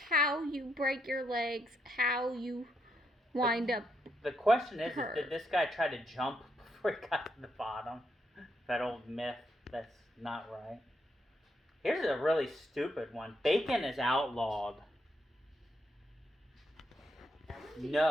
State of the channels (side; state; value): both; normal; correlation 0.78